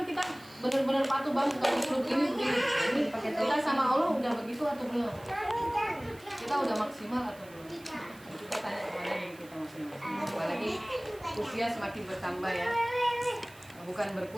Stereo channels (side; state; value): right; noise; hiss, 23 dB below the sound